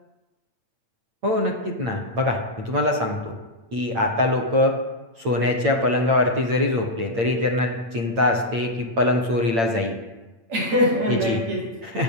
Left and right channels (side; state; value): left; late; 8.8 ms